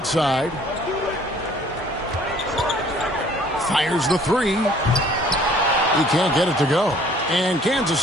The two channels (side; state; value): both; normal; correlation 0.56